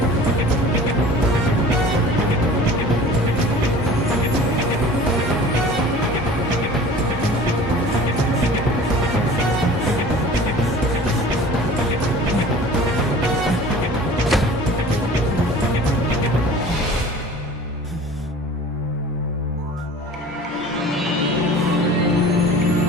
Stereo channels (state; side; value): normal; both; correlation 0.43